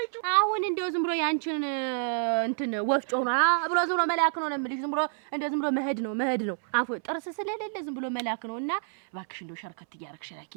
አሁን እንደው ዝም ብሎ ያንቺን እንትን ወፍጮ ነው ብሎ ዝም ብሎ መላክ ነው የምልሽ። ዝም ብሎ እንደው ዝም ብሎ መሄድ ነው አፎ ጥርስ ስለሌለ ዝም ብሎ መላክ ነው። እና እባክሽ እንደው ሸርከት እያረግሽ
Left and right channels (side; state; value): left; silent; 59 dB below the other